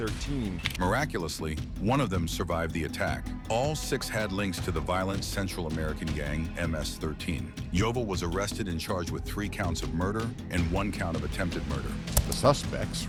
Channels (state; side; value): identical; both; correlation 1.00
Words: Miraculously, one of them survived the attack. All 6 had links to the violent Central American gang MS-13. Jovel was arrested and charged with 3 counts of murder and 1 count of attempted murder. The suspects